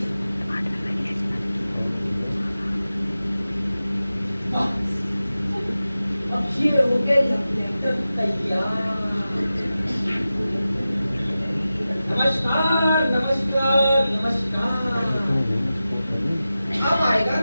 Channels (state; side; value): inverted; both; correlation -0.94